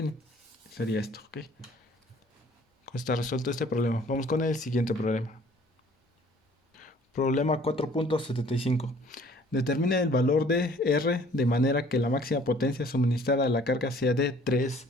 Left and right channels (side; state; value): both; normal; correlation 0.55